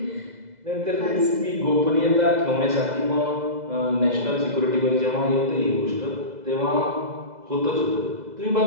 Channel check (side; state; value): left; late; 2.0 ms